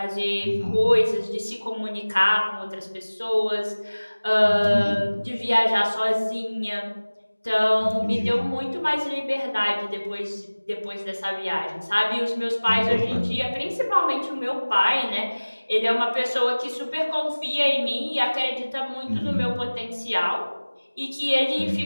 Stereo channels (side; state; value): both; inverted; correlation -1.00